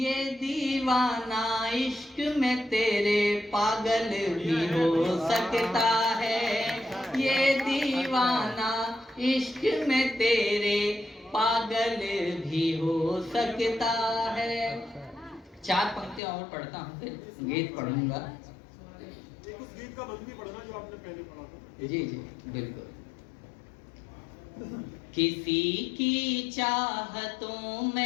दीवाना इश्क में तेरे पागल भी हो सकता है, ये दीवाना इश्क में तेरे पागल भी हो सकता है। 4 पंक्तियां और पढ़ता हूँ, फिर गीत पढ़ूंगा। उस गीत का बंद भी पढ़ना जो आपने पहले पढ़ा था। जी जी बिल्कुल। किसी की चाहतों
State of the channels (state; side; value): drops out; right; at 16.2 s